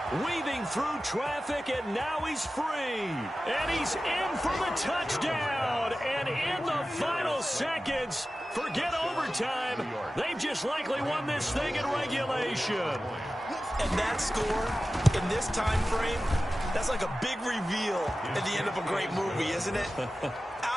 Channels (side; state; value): both; normal; correlation 0.95